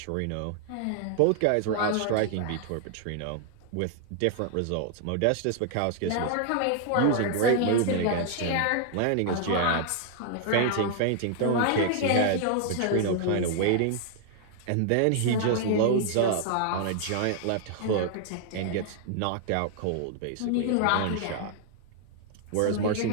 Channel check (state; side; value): different; both; correlation 0.00